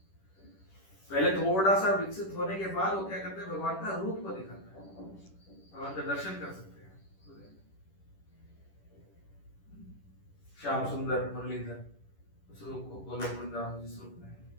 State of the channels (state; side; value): late; right; 10 ms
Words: पहले थोड़ा सा विकसित होने के बाद वो क्या करते हैं, भगवान का रूप को दिखाता है, भगवान का दर्शन कर सकते हैं। श्याम सुंदर मुरलीधर, उस रूप को गोलोक वृंदावन जिस रूप में है,